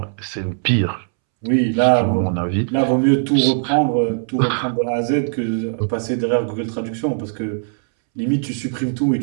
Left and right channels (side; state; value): left; silent; 66 dB below the other